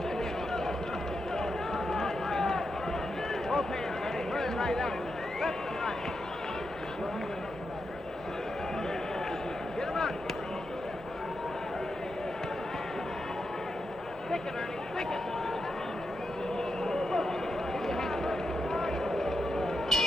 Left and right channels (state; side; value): normal; both; correlation 0.86